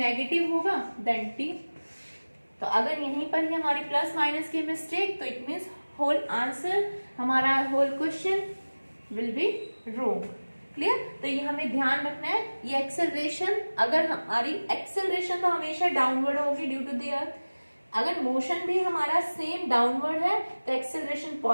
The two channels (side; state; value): both; inverted; correlation -1.00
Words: negative होगा देन t। तो अगर यहीं पर ही हमारी प्लस माइनस की मिस्टेक, तो इट मीन्स होल आंसर, हमारा whole question will be wrong. Clear? तो ये हमें ध्यान रखना है, ये एक्सेलरेशन, अगर हमारी एक्सेलरेशन तो हमेशा डाउनवर्ड होगी ड्यू टू द अर्थ, अगर मोशन भी हमारा सेम डाउनवर्ड है तो एक्सेलरेशन